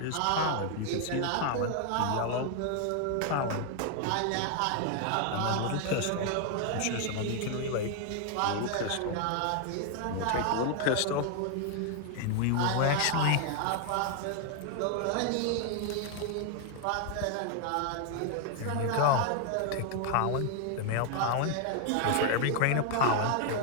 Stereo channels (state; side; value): different; both; correlation 0.00